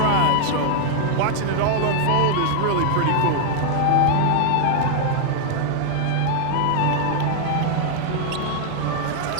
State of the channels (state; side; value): different; both; correlation 0.00